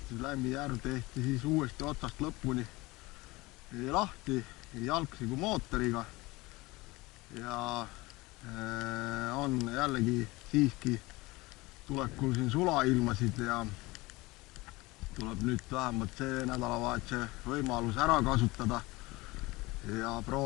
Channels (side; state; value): right; quieter; 21.8 dB